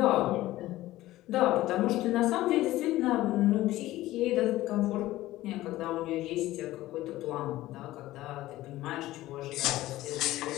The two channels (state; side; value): quieter; right; 16.2 dB